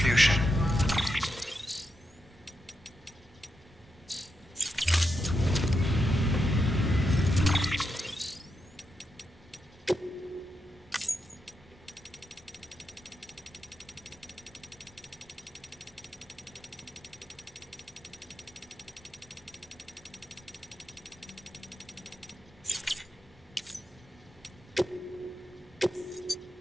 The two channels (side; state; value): both; normal; correlation 0.85